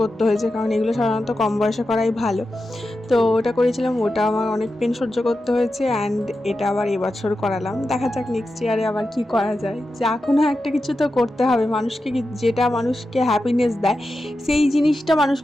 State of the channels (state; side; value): normal; both; correlation 0.91